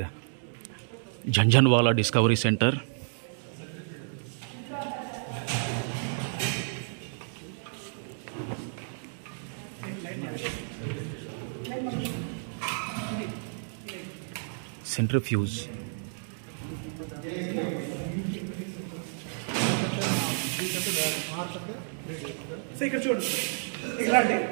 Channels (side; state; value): left; silent; digital silence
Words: Janjanwala Discovery Center. Centrifuge. So ఇక్కడ చూడు, ఇలాంటి